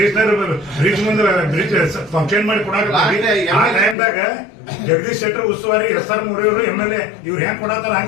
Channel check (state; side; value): drops out; right; at 4.0 s